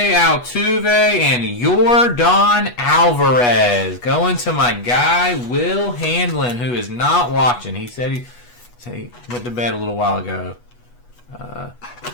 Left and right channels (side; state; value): right; late; 8.2 ms